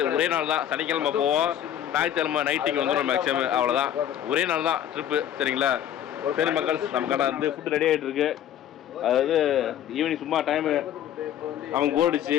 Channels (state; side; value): quieter; right; 10.5 dB